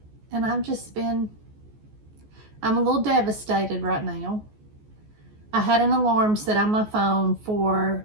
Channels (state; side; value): late; left; 14 ms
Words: And I'm a little devastated right now. I had an alarm set on my phone for